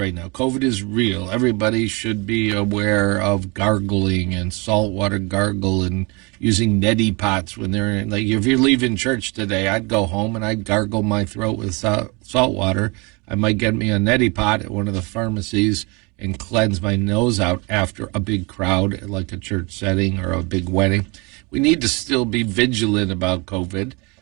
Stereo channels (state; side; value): quieter; left; 28.3 dB